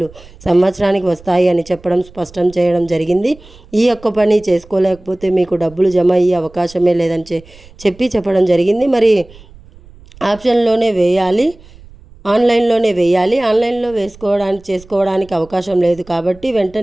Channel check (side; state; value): right; noise; rumble, 23 dB below the sound